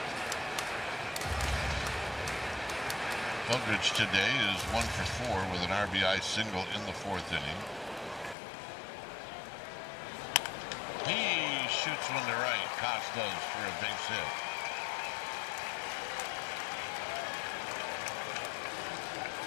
Eldridge today is 1 for 4 with an RBI single in the 4th inning. He shoots one to right. Koss does for a base hit.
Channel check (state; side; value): drops out; right; at 8.3 s